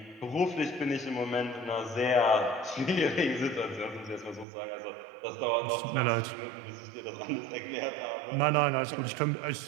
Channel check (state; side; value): drops out; left; at 4.5 s